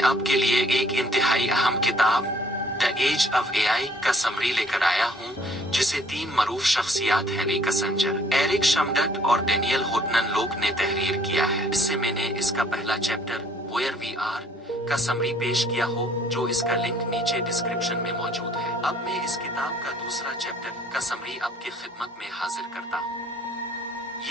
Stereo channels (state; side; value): normal; both; correlation 0.59